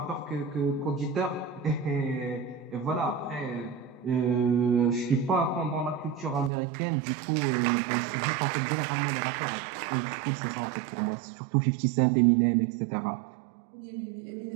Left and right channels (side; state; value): left; drops out; at 6.5 s